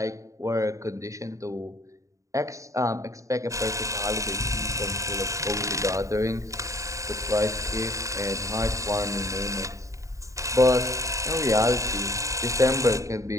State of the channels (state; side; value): late; left; 0.16 ms